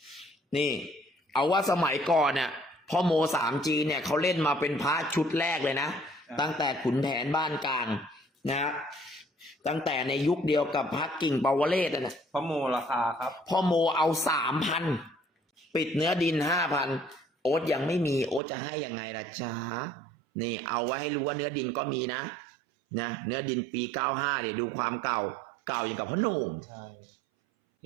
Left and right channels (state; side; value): drops out; left; at 18.4 s